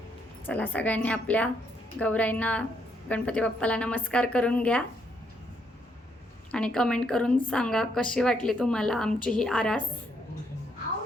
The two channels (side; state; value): both; normal; correlation 0.73